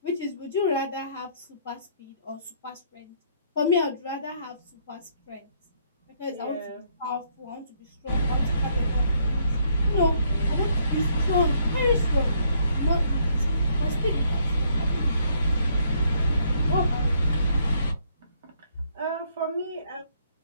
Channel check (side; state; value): both; inverted; correlation -0.69